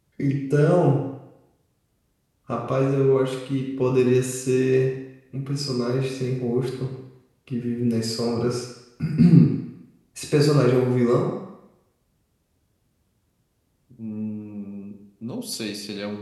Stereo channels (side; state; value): both; identical; correlation 1.00